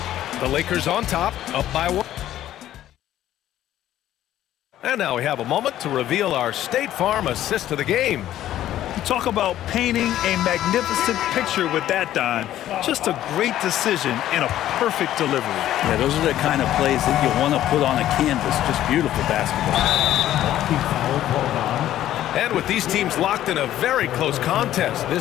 The Lakers on top, up by 1. And now we have a moment to reveal our State Farm assist of the game. You talk about painting a magnificent picture with that, Don. Just a great decision and a perfect delivery. Yeah, those are the kind of plays that you want to put on a canvas. Just beautiful basketball. And with these teams locked in a very close contest,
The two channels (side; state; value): right; quieter; 12.8 dB